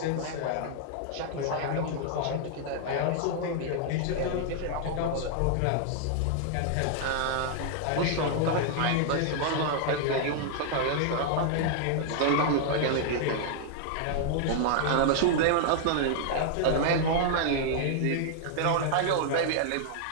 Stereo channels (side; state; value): both; different; correlation -0.01